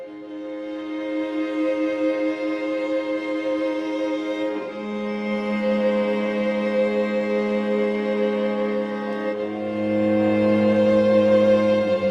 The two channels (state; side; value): identical; both; correlation 1.00